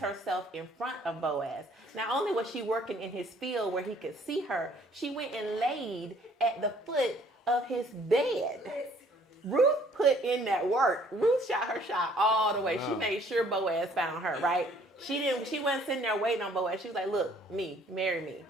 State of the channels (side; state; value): both; normal; correlation 0.59